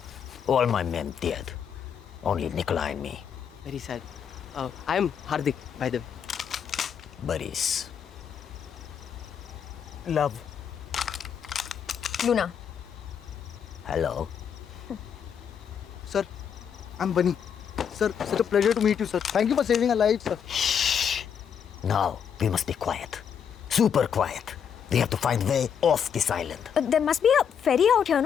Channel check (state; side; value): quieter; right; 7.8 dB